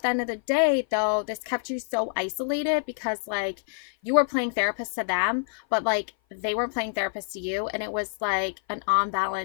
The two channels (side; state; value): right; silent; 56 dB below the other